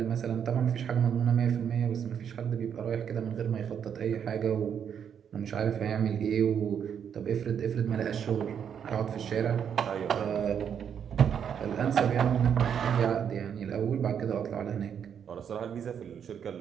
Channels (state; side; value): quieter; left; 8.1 dB